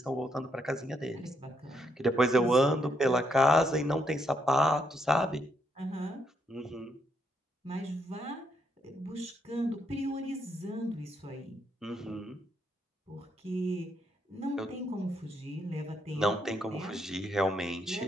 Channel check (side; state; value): both; normal; correlation 0.75